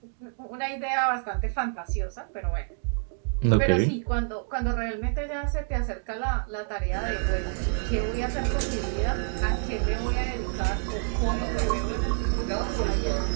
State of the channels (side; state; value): left; silent; 59 dB below the other